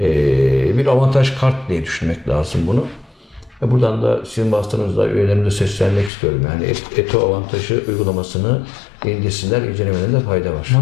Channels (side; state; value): right; drops out; at 6.1 s